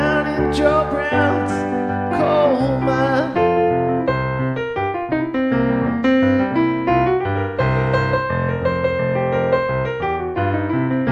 in Joe Brown's coal mine.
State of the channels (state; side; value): identical; both; correlation 1.00